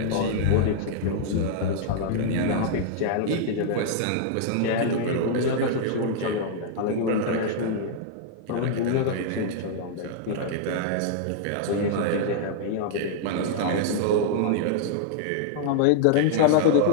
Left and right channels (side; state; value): both; different; correlation -0.01